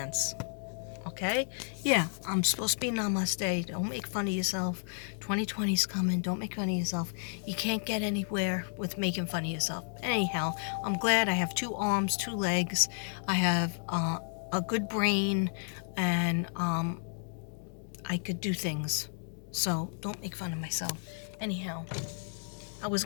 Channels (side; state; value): right; silent; 56 dB below the other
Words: Okay? Yeah, I'm supposed to be namaste. Don't make fun of yourself. 2020's coming. Don't make fun of yourself. You can't get anywhere with making fun of yourself. Anyhow, I'm glad I have 2 arms, 2 legs. I have a good brain, and I could do things. So don't make fun of myself. Anyhow, I was